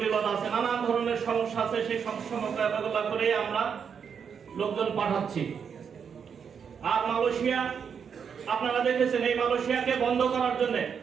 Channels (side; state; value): left; quieter; 6.9 dB